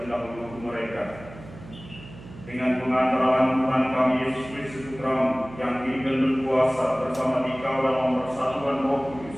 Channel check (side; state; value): right; noise; hum, 17 dB below the sound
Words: mereka. Dengan pengantaran Tuhan kami Yesus Kristus Putra yang hidup dan berkuasa bersama Dikau dalam persatuan Roh